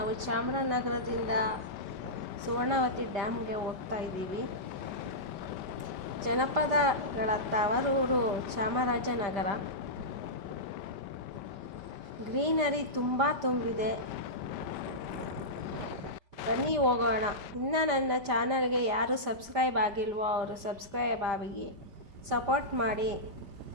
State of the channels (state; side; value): late; left; 5.0 ms